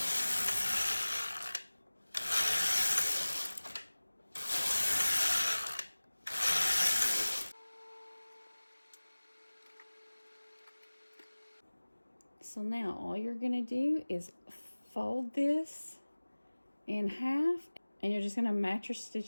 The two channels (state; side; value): inverted; both; correlation -1.00